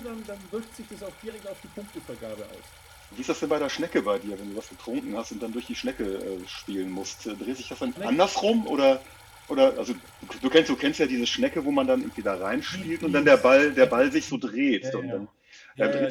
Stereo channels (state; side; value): identical; both; correlation 1.00